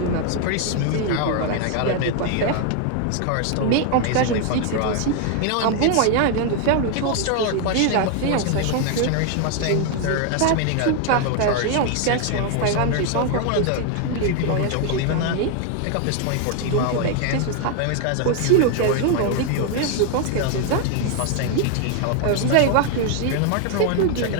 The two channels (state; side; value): different; both; correlation 0.00